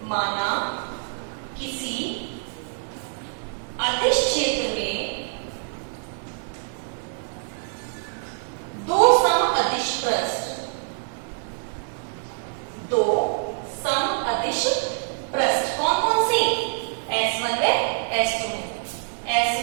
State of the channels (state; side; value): silent; left; 62 dB below the other